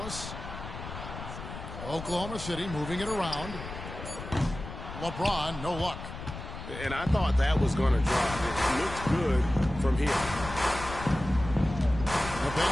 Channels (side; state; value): left; noise; rumble, 10 dB below the sound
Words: Oklahoma City moving it around. LeBron, no luck. And I thought that was going to drop. It looked good from here. The